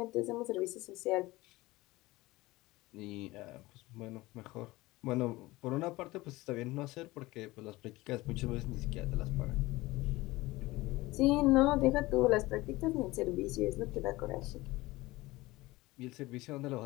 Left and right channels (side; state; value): right; quieter; 19.9 dB